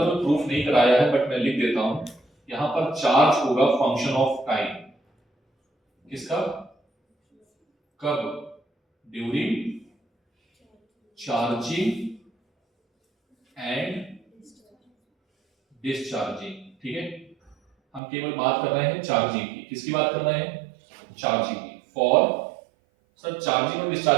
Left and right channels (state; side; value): drops out; left; at 18.0 s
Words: तो प्रूफ नहीं कराया है बट मैं लिख देता हूं, यहां पर चार्ज होगा फंक्शन ऑफ टाइम। किसका, कब, ड्यूरिंग चार्जिंग एंड डिस्चार्जिंग, ठीक है। हम केवल बात कर रहे हैं चार्जिंग की, किसकी बात कर रहे हैं, चार्जिंग की। फॉर सर चार्जिंग और